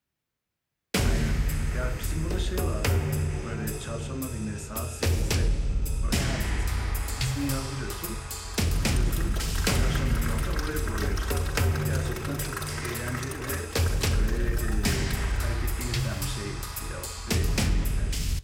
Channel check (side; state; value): both; identical; correlation 1.00